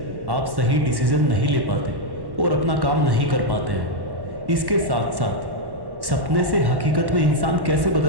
आप सही डिसीजन नहीं ले पाते और अपना काम नहीं कर पाते हैं। इसके साथ साथ सपने से हकीकत में इंसान कैसे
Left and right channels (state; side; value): late; left; 1.1 ms